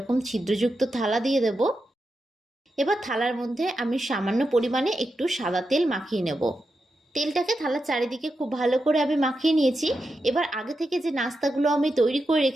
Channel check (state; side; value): normal; both; correlation 0.88